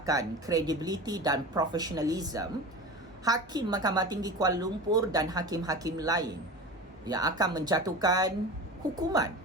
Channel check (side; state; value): both; normal; correlation 0.31